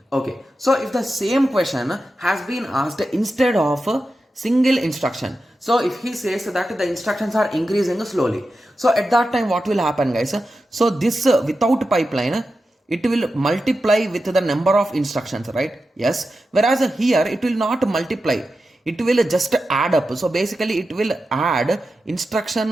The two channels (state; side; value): normal; both; correlation 0.91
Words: So if the same question has been asked instead of a single instruction, so if he says that the instructions are increasing slowly, so at that time what will happen, guys? So this without pipeline, it will multiply with the number of instructions, right? Yes. Whereas here it will not multiply. It will just add up. So basically it will add instruction